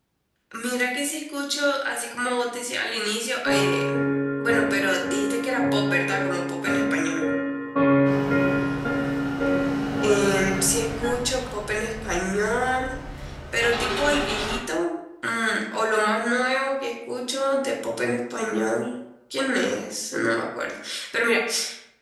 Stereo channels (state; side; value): identical; both; correlation 1.00